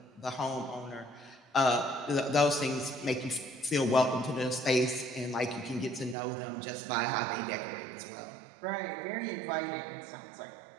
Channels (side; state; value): left; drops out; at 6.2 s